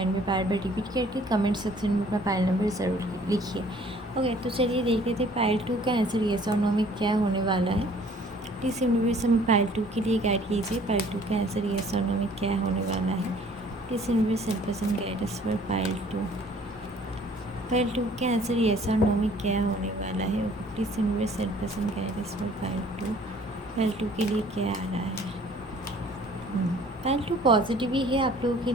में बार बार रिपीट करके कमेंट सेक्शन में अपना पाइल नंबर ज़रूर लिखिए। ओके, तो चलिए देख लेते हैं पाइल टू का आंसर येस और नो में क्या होने वाला है। प्लीज़ यूनिवर्स हमें पाइल टू के लिए गाइड कीजिए। पाइल टू का आंसर येस और नो में क्या होने वाला है। Please universe help us and guide us for pile two. Pile two के आंसर येस और नो में क्या होने वाला है। Please universe help us and guide us for pile two. Pile two के लिए क्या आ रहा है। पाइल टू पॉजिटिव ही है आप लोगों के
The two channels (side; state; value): both; normal; correlation 0.55